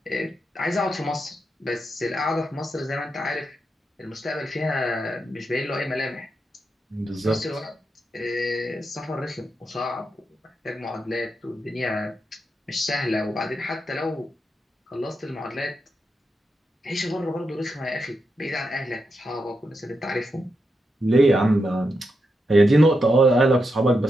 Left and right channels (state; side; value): normal; both; correlation 0.85